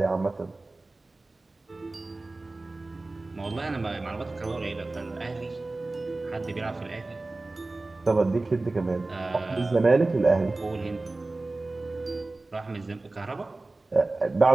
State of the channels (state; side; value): quieter; left; 3.1 dB